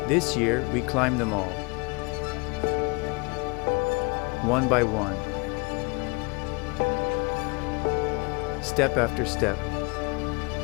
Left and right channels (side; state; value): right; quieter; 29.7 dB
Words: This year, we climbed them all, one by one, step after step,